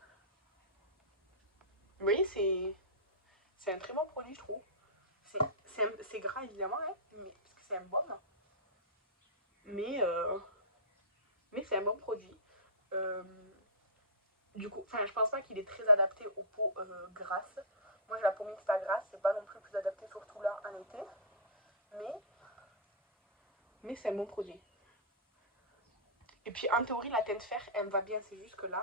Vous voyez, c'est un très bon produit, je trouve. C'est gras évidemment, hein, mais, parce que c'est un baume, mais, mais c'est un bon produit. Du coup, enfin, je pense pas qu'il est très adapté aux peaux grasses. Moi j'ai la peau mixte à grasse, c'est pas non plus adapté, surtout là en été, mais c'est un bon produit. Et puis en théorie, la teinte fer, elle me va bien, c'est juste que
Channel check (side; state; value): both; normal; correlation -0.17